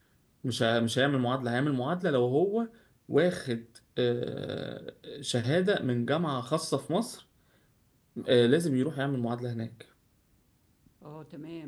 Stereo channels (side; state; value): both; identical; correlation 1.00